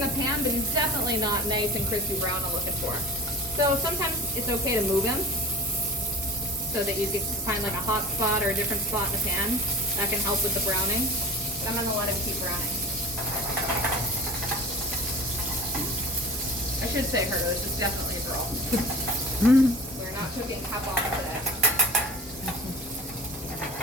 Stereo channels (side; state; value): both; normal; correlation 0.36